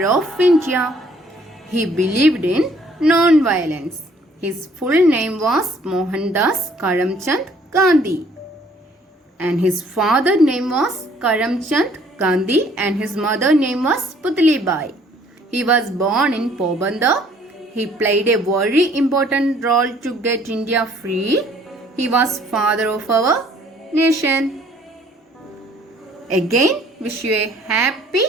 of India. He believed in non-violence. His full name was Mohandas Karamchand Gandhi. And his father name was Karamchand Gandhi and his mother name was Putli Bai. He was born in Pobandar. He played a very important role to get India free. He was father of our nation. Again, wish you a happy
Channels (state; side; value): normal; both; correlation 0.60